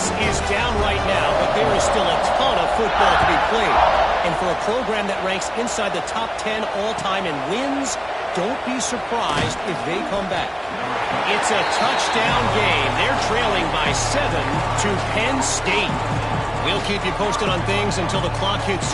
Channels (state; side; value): identical; both; correlation 1.00